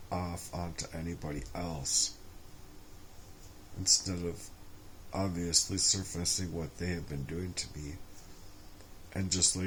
off onto anybody else. Instead of obviously surfacing what they have been doing to me. And just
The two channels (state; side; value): identical; both; correlation 1.00